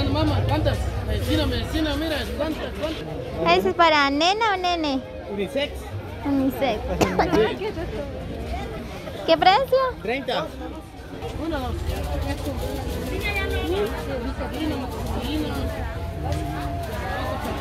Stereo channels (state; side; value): identical; both; correlation 1.00